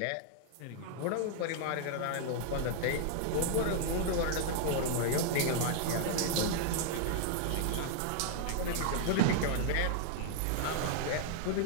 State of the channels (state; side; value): different; both; correlation -0.01